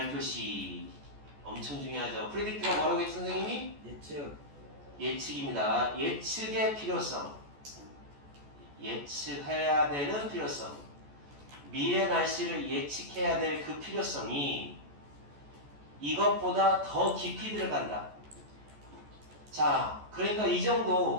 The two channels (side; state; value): left; late; 14 ms